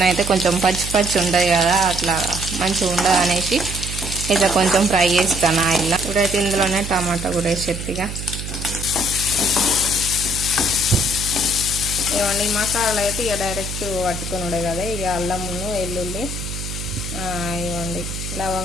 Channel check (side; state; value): right; noise; hum, 7 dB below the sound